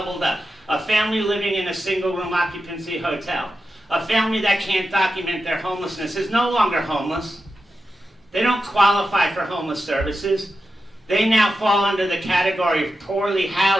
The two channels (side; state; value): both; normal; correlation 0.90